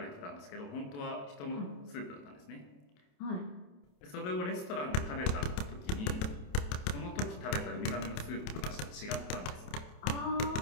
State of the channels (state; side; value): late; right; 28 ms